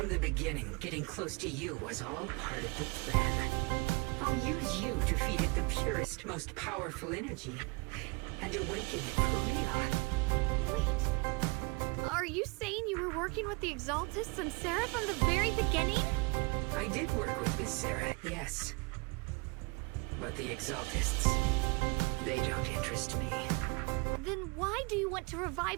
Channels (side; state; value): left; quieter; 29.1 dB